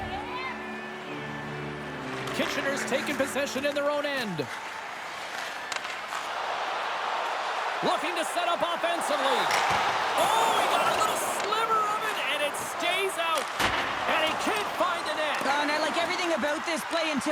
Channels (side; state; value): both; identical; correlation 1.00